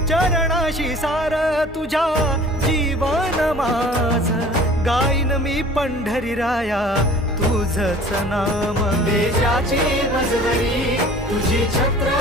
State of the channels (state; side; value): normal; both; correlation 0.47